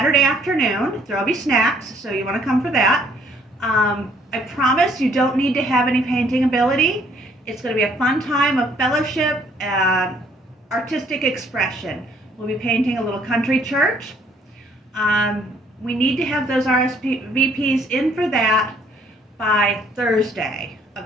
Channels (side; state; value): both; normal; correlation 0.63